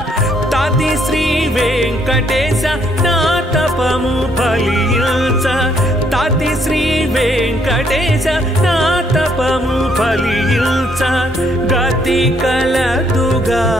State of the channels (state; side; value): normal; both; correlation 0.69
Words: తది శ్రీ వెంకటేశ నా తపము ఫలించ తది శ్రీ వెంకటేశ నా తపము ఫలించ గతి కలదుగా